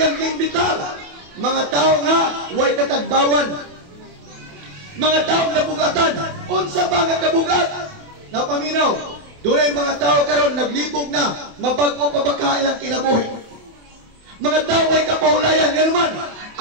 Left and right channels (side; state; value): left; late; 28 ms